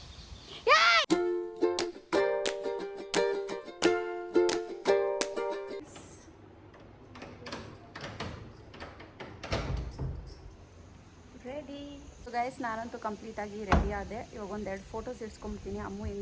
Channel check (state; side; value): identical; both; correlation 1.00